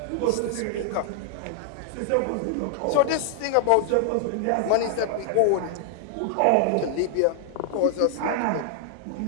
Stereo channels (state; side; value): different; both; correlation 0.00